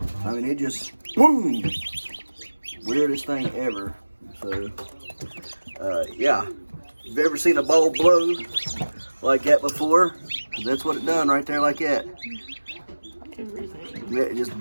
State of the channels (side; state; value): both; inverted; correlation -1.00